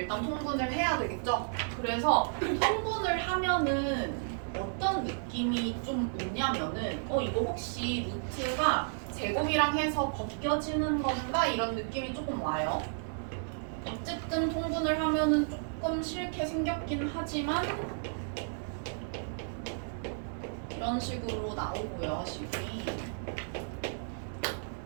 통분을 해야 되겠죠? 그래서 통분을 하면은 어떤 느낌이 좀 오냐면은 이거 혹시 루트가 제곱이랑 해서 벗겨지는 건가? 이런 느낌이 조금 와요. 어쨌든 통분을 하면은 조금 싫게 생겼긴 하지만 이런 식으로 나오고요, 식이.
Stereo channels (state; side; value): silent; left; 56 dB below the other